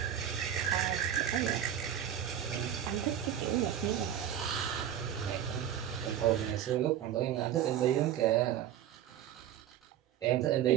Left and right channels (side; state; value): left; quieter; 10.3 dB